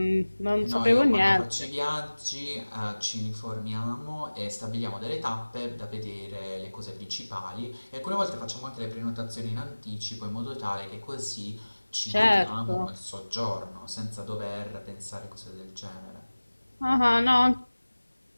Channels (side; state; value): both; inverted; correlation -1.00